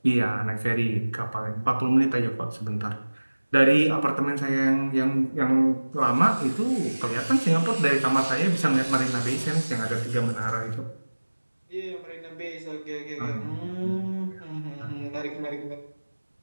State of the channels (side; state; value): both; inverted; correlation -1.00